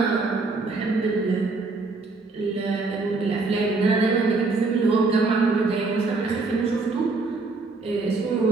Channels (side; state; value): left; quieter; 3.8 dB